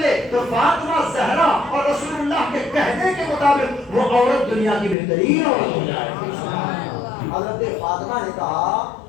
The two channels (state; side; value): drops out; right; at 5.0 s